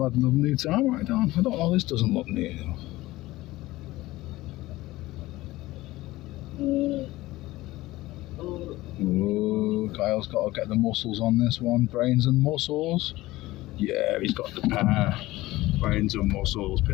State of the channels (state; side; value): quieter; right; 18.1 dB